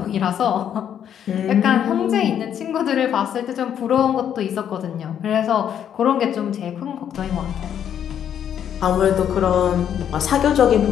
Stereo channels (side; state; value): right; quieter; 9.3 dB